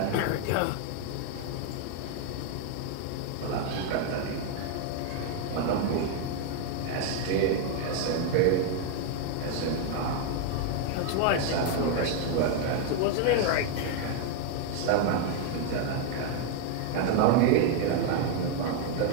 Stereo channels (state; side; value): different; both; correlation 0.01